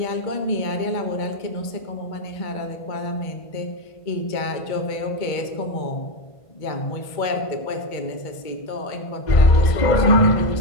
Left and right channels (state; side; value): late; right; 1.5 ms